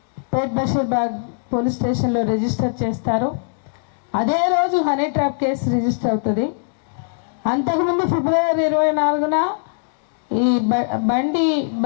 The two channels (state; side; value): silent; right; digital silence